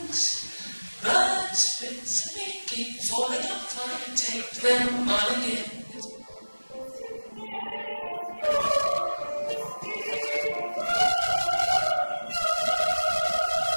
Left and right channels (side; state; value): both; inverted; correlation -1.00